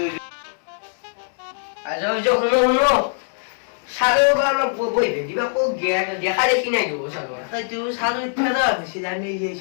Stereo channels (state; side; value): silent; right; digital silence